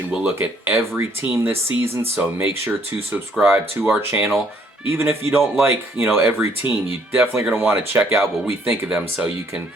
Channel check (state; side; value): normal; both; correlation 0.64